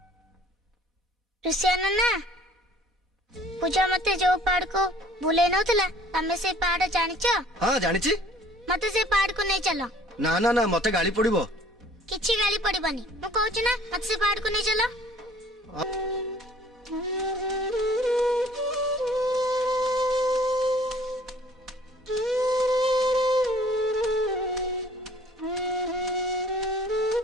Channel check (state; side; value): normal; both; correlation 0.54